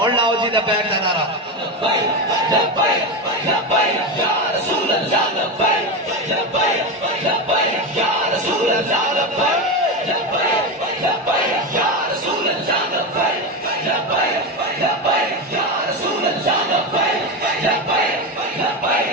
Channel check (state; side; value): normal; both; correlation 0.16